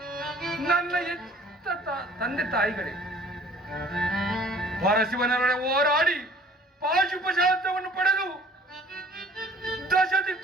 ನನ್ನ ಎತ್ತ ತಂದೆ ತಾಯಿಗಳೇ. ಪರಶಿವನೊಡನೆ ಹೋರಾಡಿ ಪಾಶುಪಶಾಸ್ತ್ರವನ್ನು ಪಡೆದು ದಶ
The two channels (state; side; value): normal; both; correlation 0.51